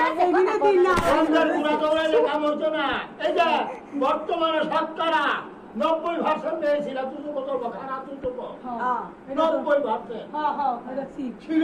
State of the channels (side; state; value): both; identical; correlation 1.00